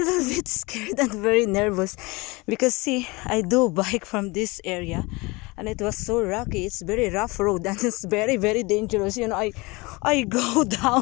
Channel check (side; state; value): right; quieter; 24.7 dB